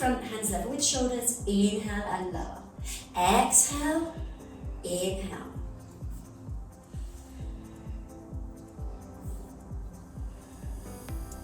hands level with shoulders. Inhale and lower. Exhale, inhale.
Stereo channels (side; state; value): both; identical; correlation 1.00